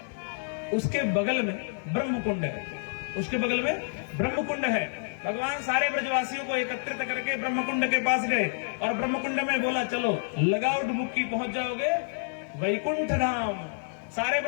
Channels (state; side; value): silent; right; digital silence